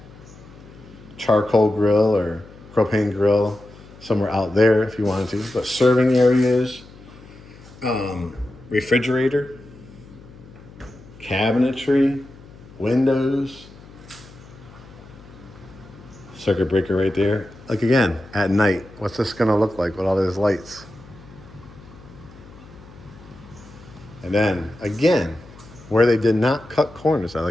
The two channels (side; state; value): left; noise; hum, 20 dB below the sound